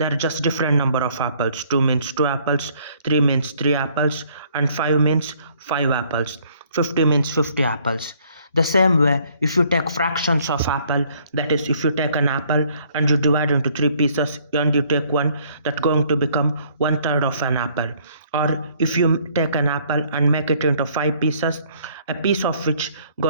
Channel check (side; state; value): both; inverted; correlation -0.62